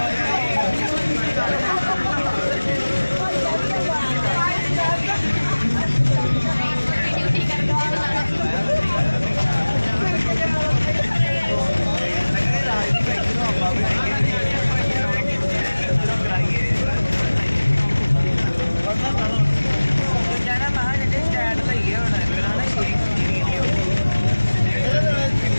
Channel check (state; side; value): inverted; both; correlation -1.00